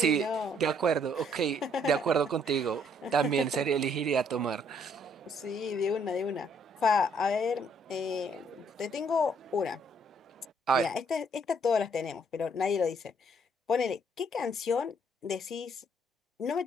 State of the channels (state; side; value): normal; both; correlation 0.66